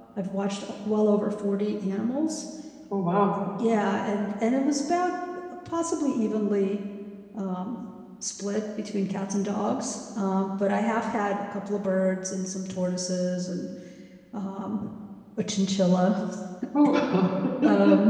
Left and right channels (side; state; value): both; identical; correlation 1.00